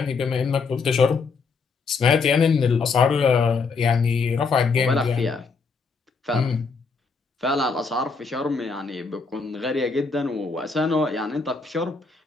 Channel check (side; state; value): right; quieter; 4.6 dB